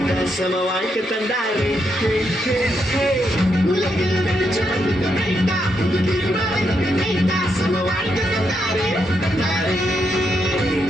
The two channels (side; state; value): both; normal; correlation 0.80